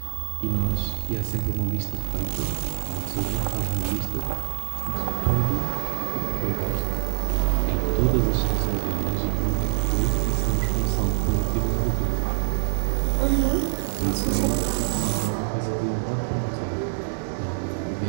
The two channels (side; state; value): left; silent; digital silence